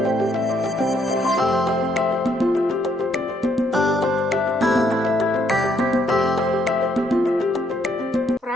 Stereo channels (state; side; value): normal; both; correlation 0.71